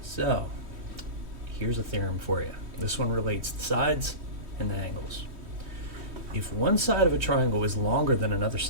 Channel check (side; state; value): left; late; 3.1 ms